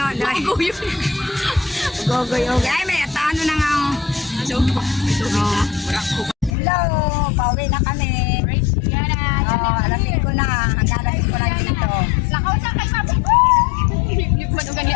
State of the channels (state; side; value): drops out; right; at 6.5 s